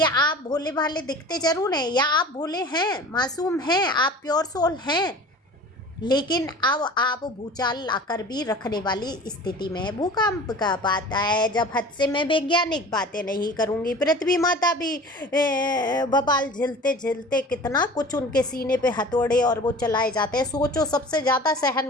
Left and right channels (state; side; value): normal; both; correlation 0.41